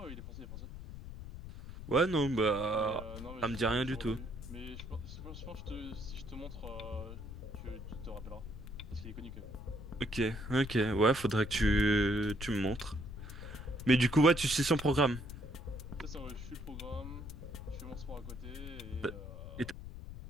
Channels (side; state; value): left; noise; rumble, 11 dB below the sound